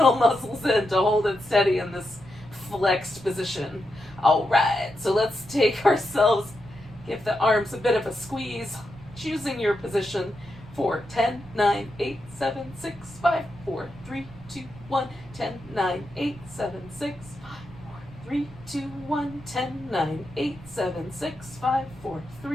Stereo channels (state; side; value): noise; right; rumble, 19 dB below the sound